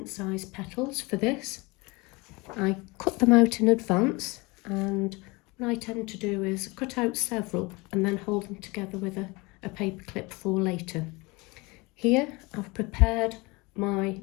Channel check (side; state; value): right; quieter; 25.3 dB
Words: size petals for this. I cut them out in advance, and what I tend to do is cut out several and then hold them together with a paper clip for later. Here I've prepared my